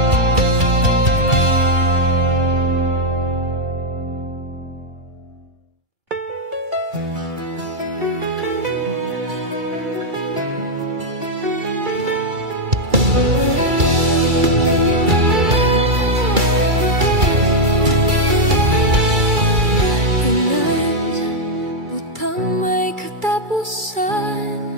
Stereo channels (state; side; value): late; left; 2.3 ms